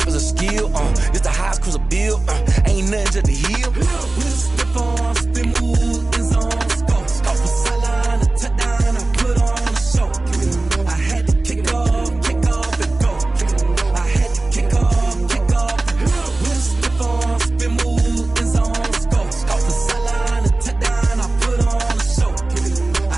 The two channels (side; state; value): left; quieter; 3.0 dB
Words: is a skill. It's the highest cruiser bill, ain't nothing to the heel. With a stiff arm, spin move, in zone, let's go. From sideline to touchdown, I put on a show. I had to kick off and go. I had to kick off and go. With a stiff arm, spin move, in zone, let's go. From sideline to touchdown, I put on a show. I